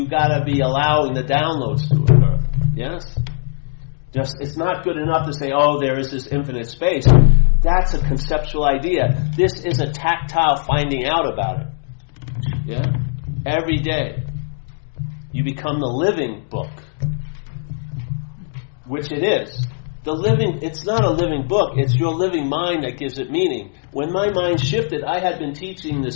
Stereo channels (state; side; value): silent; right; digital silence